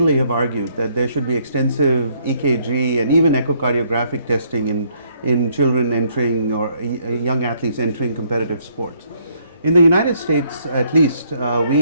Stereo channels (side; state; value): both; inverted; correlation -0.68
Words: have argued that there should be extensive EKG and even echocardiographic testing in children entering or young athletes entering competitive sports. In the United States, at least,